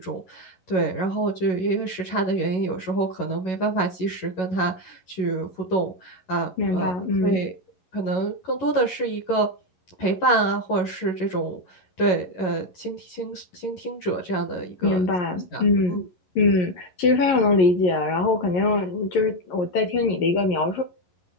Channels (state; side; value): late; right; 11 ms